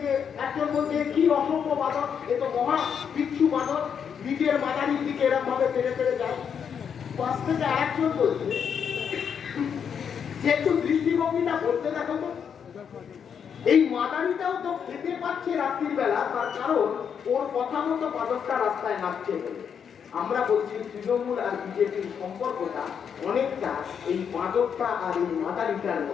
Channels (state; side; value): quieter; right; 7.4 dB